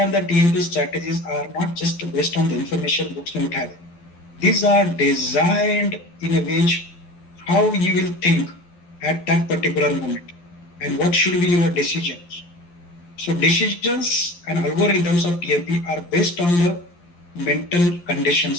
that TMP strategies are not just based on the information books don't have. These are designed in a way how you will think at that particular moment and what should be your decisions. So decisions and algorithms of TMP are based on the mental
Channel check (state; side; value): late; right; 12 ms